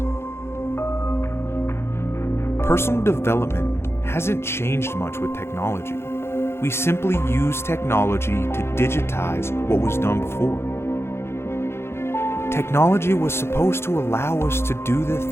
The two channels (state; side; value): late; right; 0.12 ms